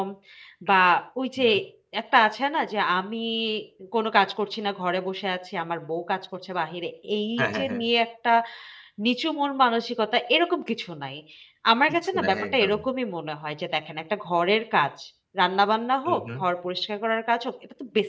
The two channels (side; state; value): both; identical; correlation 1.00